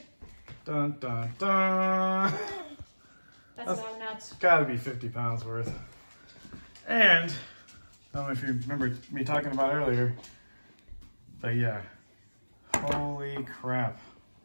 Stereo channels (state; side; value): inverted; both; correlation -1.00